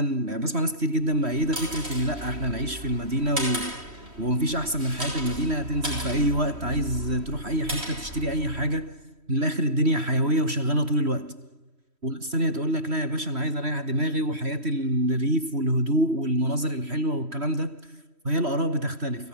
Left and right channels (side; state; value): left; late; 3.1 ms